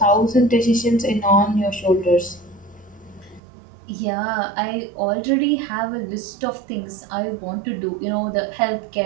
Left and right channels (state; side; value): drops out; left; at 3.4 s